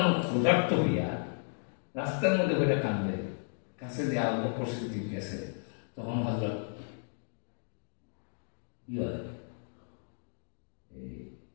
আনহু ক্ষুধার্ত হইয়া রাস্তার মধ্যে বসে কান্দে, কাছে দিয়ে আবু বকর সিদ্দিক গেছে। তখন হযরত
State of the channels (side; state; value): right; silent; digital silence